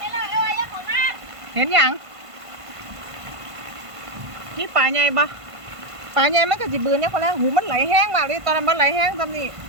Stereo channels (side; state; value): left; late; 1.5 ms